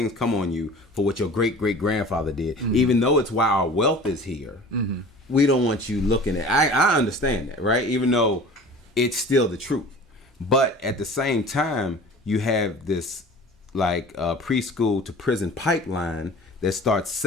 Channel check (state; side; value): normal; both; correlation 0.41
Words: come on you for what your great grandfather did, even though it's why our wealth is here. We don't want you looking at. I understand that, right? Even though it's still the truth. But at the same time, you have this like preschool to prison pipeline that starts